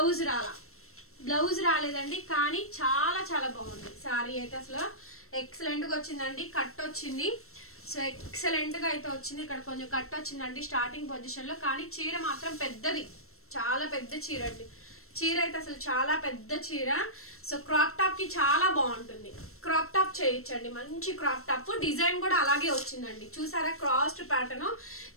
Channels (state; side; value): late; right; 0.63 ms